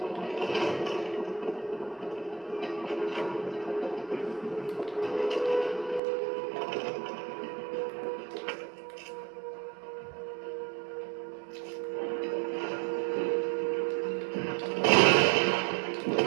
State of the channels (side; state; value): left; drops out; at 6.0 s